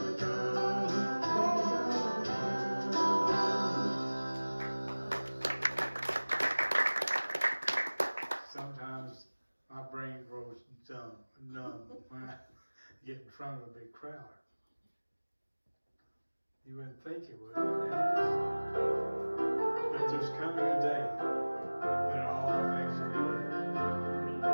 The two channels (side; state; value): both; inverted; correlation -1.00